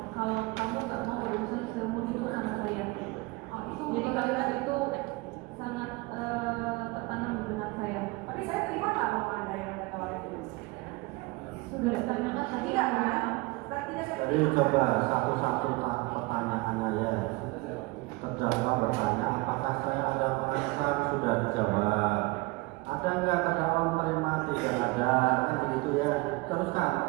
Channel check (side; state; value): left; quieter; 23.7 dB